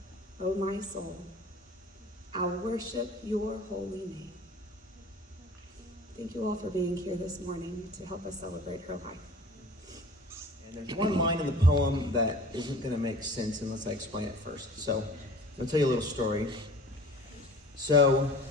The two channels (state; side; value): normal; both; correlation 0.44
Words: O my soul. I'll worship your holy name." Thank you all for being here this morning to help us celebrate her life. And there's one line in the poem that isn't going to make sense unless I explain it first. So I'll tell you a little story. So